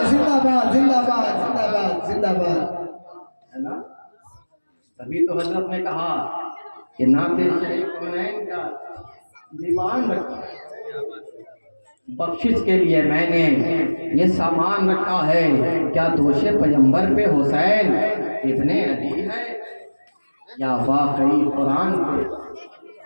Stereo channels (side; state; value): both; inverted; correlation -1.00